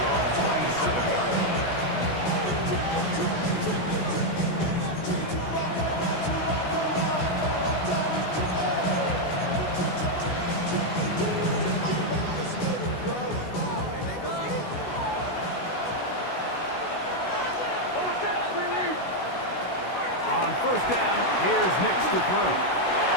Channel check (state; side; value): late; right; 16 ms